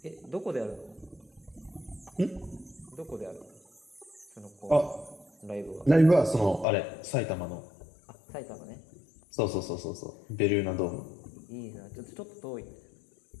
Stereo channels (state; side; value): drops out; right; at 6.7 s